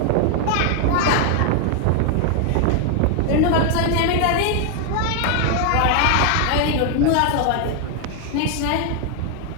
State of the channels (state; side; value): different; both; correlation 0.00